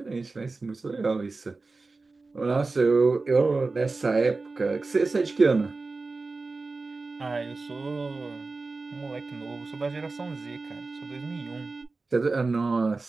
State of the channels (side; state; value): left; quieter; 3.7 dB